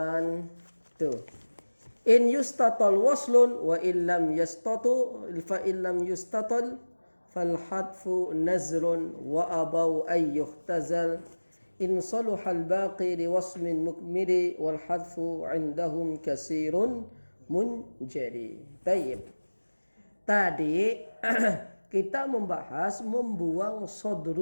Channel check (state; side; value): inverted; both; correlation -1.00